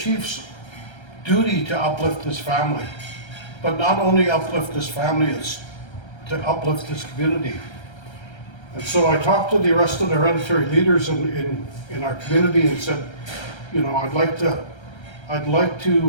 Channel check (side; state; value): right; late; 1.3 ms